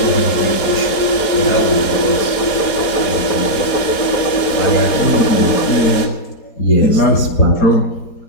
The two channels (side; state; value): right; late; 4.2 ms